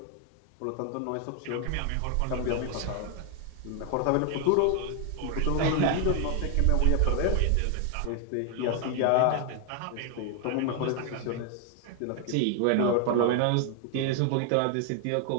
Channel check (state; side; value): different; both; correlation 0.00